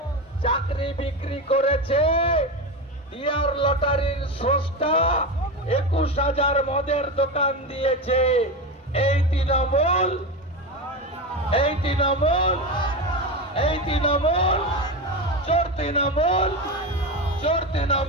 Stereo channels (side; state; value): both; normal; correlation 0.19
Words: চাকরি বিক্রি করেছে, ডিয়ার লটারির স্রষ্টা 21,000 মদের দোকান দিয়েছে। এই তৃণমূল চোর তৃণমূল চোর